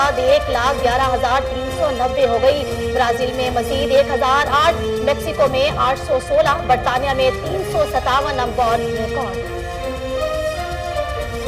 1,11,390 हो गई। ब्राजील में मजीद 1,008, मेक्सिको में 816, बरतानिया में 357 अमवात रिकॉर्ड।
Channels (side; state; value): both; identical; correlation 1.00